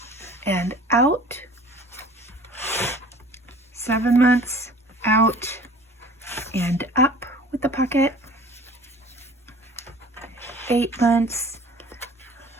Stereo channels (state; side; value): normal; both; correlation 0.46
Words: and out. 7 months, out and up with the pocket. 8 months,